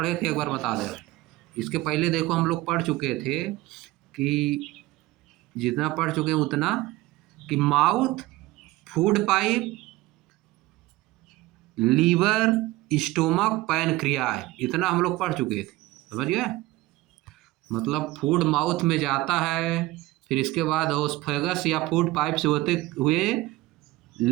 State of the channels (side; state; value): left; quieter; 18.2 dB